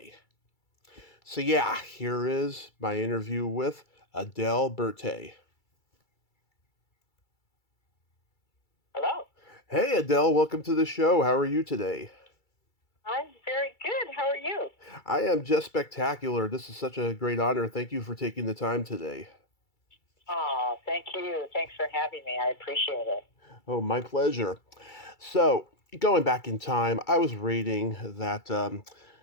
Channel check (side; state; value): right; late; 2.3 ms